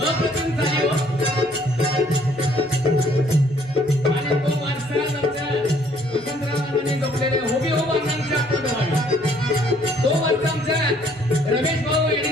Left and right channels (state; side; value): noise; left; hum, 27 dB below the sound